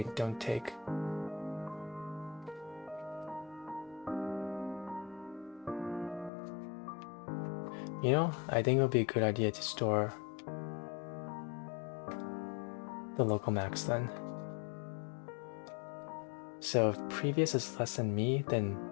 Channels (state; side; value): drops out; right; at 6.3 s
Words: don't take. You know, I think it would be a good idea to store the local max then. So if previous is less than me, then